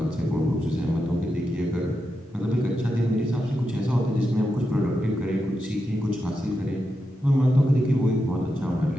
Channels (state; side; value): normal; both; correlation 0.87